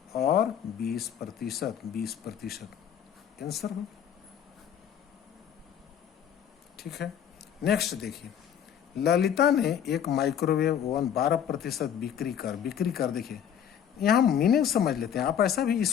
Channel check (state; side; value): quieter; right; 9.0 dB